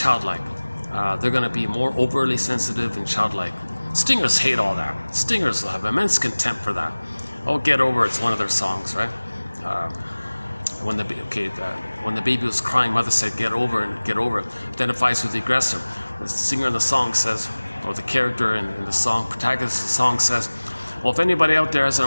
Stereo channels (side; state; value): both; inverted; correlation -1.00